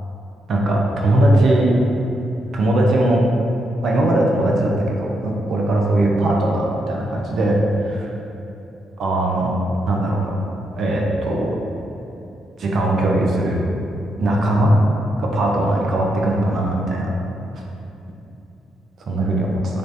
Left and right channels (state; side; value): normal; both; correlation 0.81